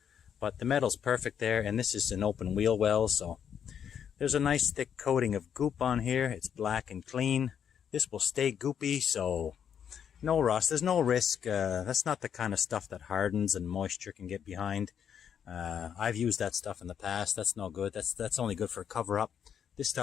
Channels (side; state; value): right; quieter; 8.4 dB